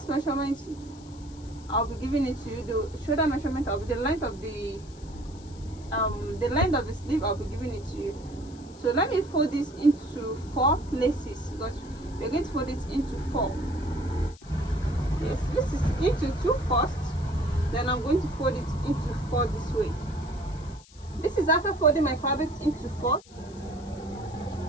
measurement, I'll be giving it to you. The shoulder measurement, I'll be the length of the sleeve, I'll be giving it to you. So let me fold this into 4 places because we're going to fold it into 4. Yes, this is into 2 first, then I'm going to fold it into 4 this way. This is after folding my fabric into 4.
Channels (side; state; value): left; noise; hiss, 24 dB below the sound